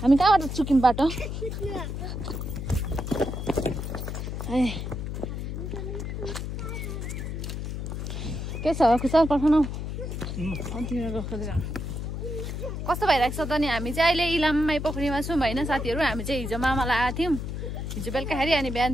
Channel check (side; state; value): left; noise; hum, 5 dB below the sound